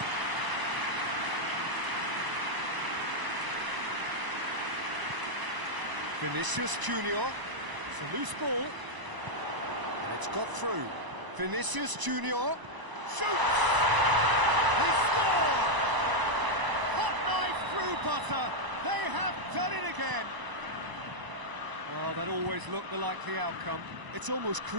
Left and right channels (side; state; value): left; late; 1.0 ms